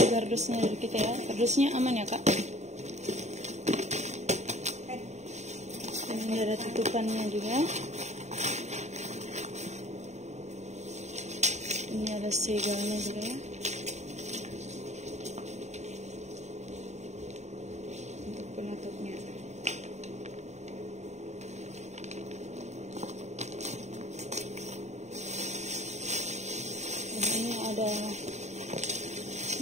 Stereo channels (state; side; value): late; left; 0.33 ms